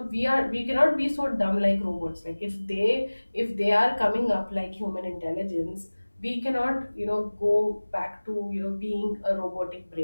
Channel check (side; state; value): both; inverted; correlation -1.00